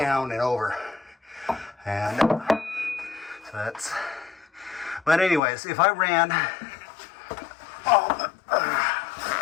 and over. And so that's, but anyways, if I ran,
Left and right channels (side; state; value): right; drops out; at 5.4 s